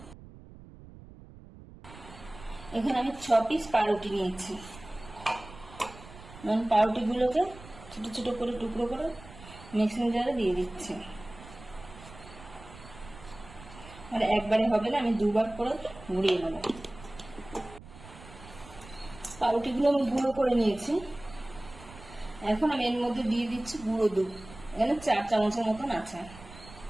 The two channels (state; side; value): noise; right; rumble, 18 dB below the sound